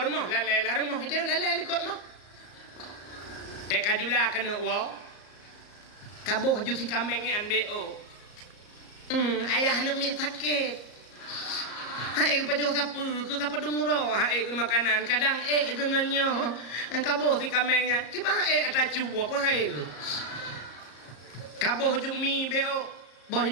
mah lalai rumah itu lalai ikut mah teka jula kena wa kaboh ju si kameng an beo ayah nak mi sakit hai ke pajo sapu ke kapa dumuro hai ke makanan kadang genganyo kaboh si kamengnya kipa ata cuwa apa hai kaboh ju mi beo boh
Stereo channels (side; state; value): right; late; 34 ms